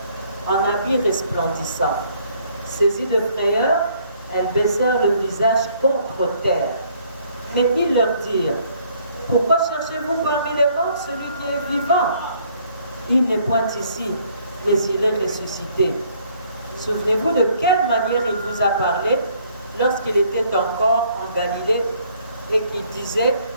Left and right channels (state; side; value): inverted; both; correlation -0.63